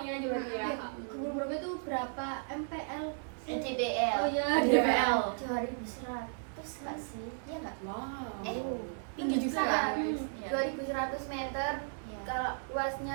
aja berarti ya. Ke Bromo itu berapa MPL? NJBL. Oh iya, NJBL. 2100 nggak sih? Iya nggak? Wow. Tinggi juga kan? Iya. 2100 meter. Iya. Kalau luasnya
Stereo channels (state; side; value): silent; left; digital silence